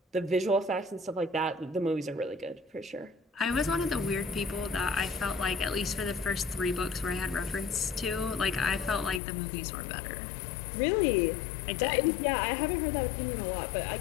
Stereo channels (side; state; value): right; drops out; at 9.2 s